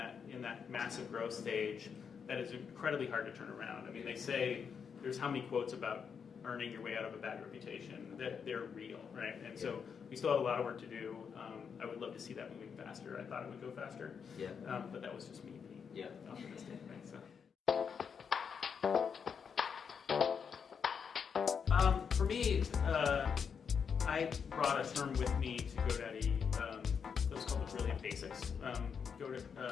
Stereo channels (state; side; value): quieter; right; 6.6 dB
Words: massive growth stage that is incredibly hard to turn around. I mean, they say there's how many quotes about earning your way out of a bad reputation. They're real, right? And so we still have a lot of work to do. I would love to see that moving faster. I thought it would go faster, but that was just me being optimistic, right? So. For me, I brought a term with me to GoDaddy that was called the Brilliant Basics.